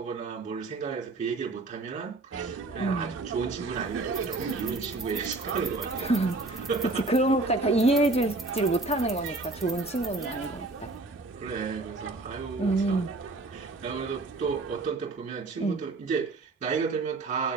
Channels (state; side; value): quieter; left; 3.2 dB